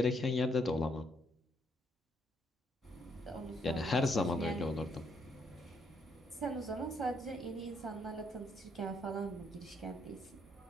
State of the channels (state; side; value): normal; both; correlation 0.72